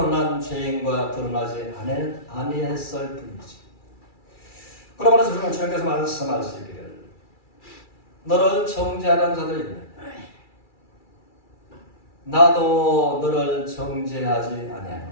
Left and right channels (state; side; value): late; right; 2.3 ms